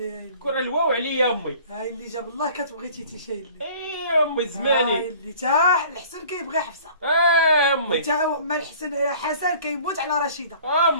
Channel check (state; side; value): inverted; both; correlation -0.49